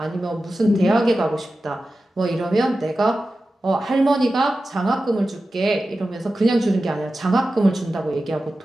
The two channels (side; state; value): both; normal; correlation 0.93